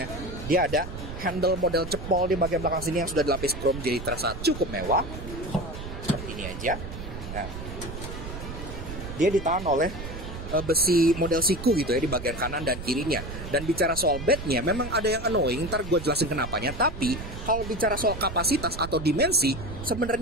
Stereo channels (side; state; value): right; noise; rumble, 9 dB below the sound